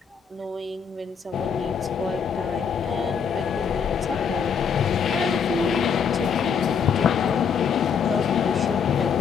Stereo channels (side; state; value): right; quieter; 6.7 dB